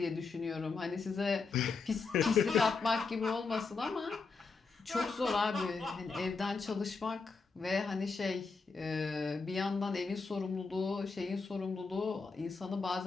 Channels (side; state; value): right; quieter; 4.5 dB